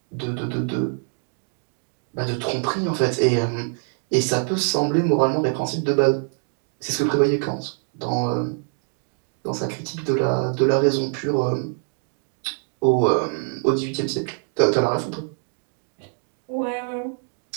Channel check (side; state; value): left; silent; 56 dB below the other